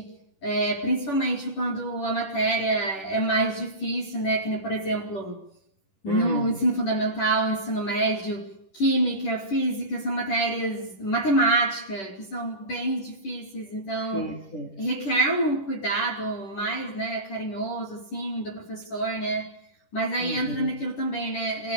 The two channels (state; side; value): late; right; 10 ms